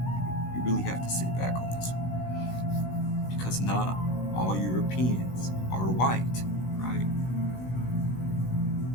You really have to sit back on this one. Because not all Europeans are white, right?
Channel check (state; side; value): late; right; 16 ms